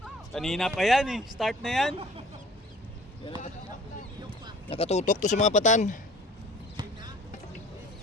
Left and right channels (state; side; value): normal; both; correlation 0.49